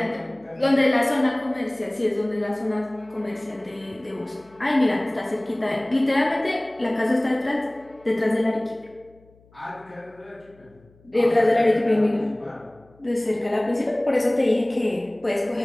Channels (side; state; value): left; noise; hum, 29 dB below the sound